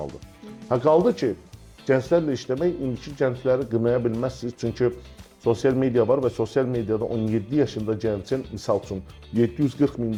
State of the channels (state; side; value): identical; both; correlation 1.00